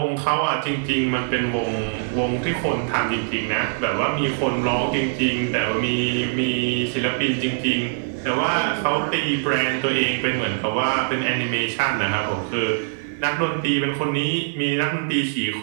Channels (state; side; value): silent; left; digital silence